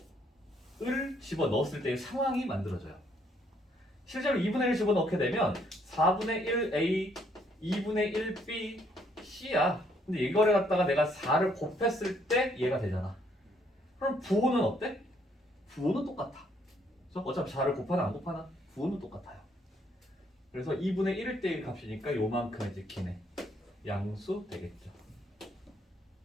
을 집어넣었을 때의 상황이 만들어져요. 실제로 2분의 1 집어넣게 되면 4분의 1a, 2분의 1b, c야. 근데 이거를 갖다가 내가 4를 곱했을 때 얘가 되잖아. 그럼 부호는 어때? 부호는 똑같아. 그래서 어차피 4를 곱하나 안 곱하나? 부호는 똑같아요. 그래서 2분의 1일 때의 값이니까 요만큼 이제 기네. 양수 되겠죠.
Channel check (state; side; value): normal; both; correlation 0.69